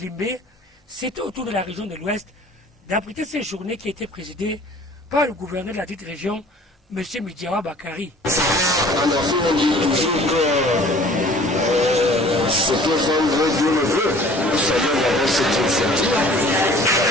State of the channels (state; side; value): normal; both; correlation 0.50